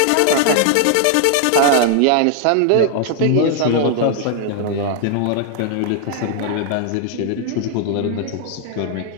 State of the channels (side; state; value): both; different; correlation 0.00